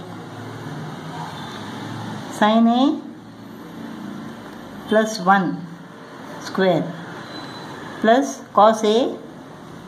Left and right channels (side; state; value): both; identical; correlation 1.00